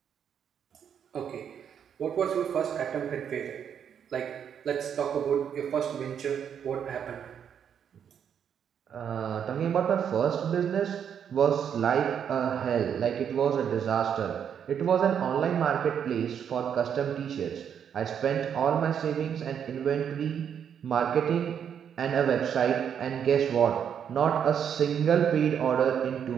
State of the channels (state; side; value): quieter; left; 8.2 dB